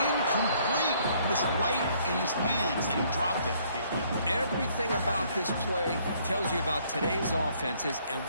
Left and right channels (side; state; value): both; inverted; correlation -0.64